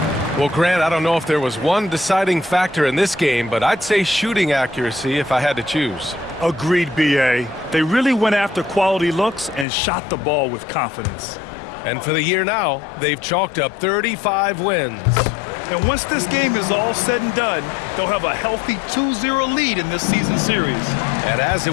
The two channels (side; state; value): right; drops out; at 9.7 s